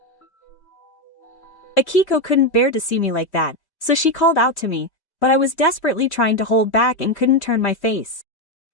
Akiko couldn't bear to see me like that, so she called out to me, but I was desperately trying to hold back and couldn't turn my face.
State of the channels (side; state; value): right; late; 3.1 ms